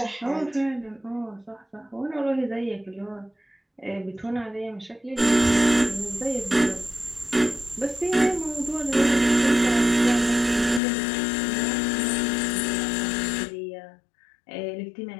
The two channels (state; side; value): drops out; right; at 10.8 s